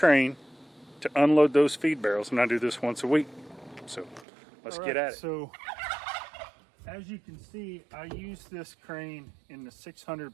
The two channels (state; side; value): drops out; left; at 4.2 s